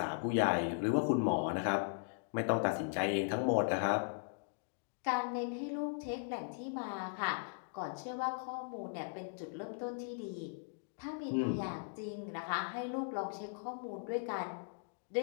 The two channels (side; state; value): right; silent; digital silence